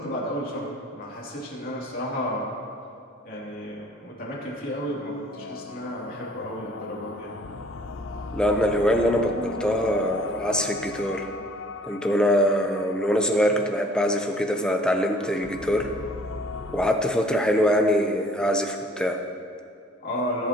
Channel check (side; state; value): both; normal; correlation 0.54